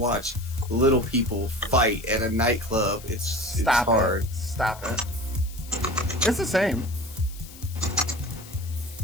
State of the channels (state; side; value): noise; left; hiss, 18 dB below the sound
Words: little people fight at a nightclub. It's Stop hard. it. Stop it. It's the same.